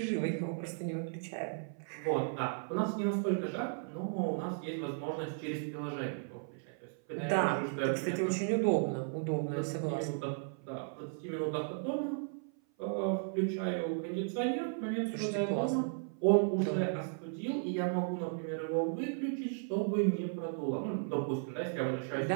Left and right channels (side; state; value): left; silent; 54 dB below the other